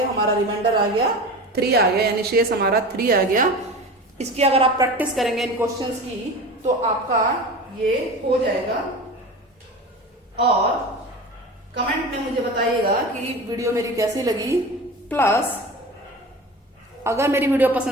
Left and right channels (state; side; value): normal; both; correlation 0.32